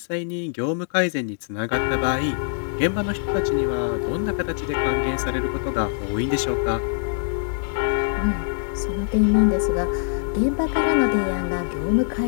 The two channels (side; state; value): right; silent; digital silence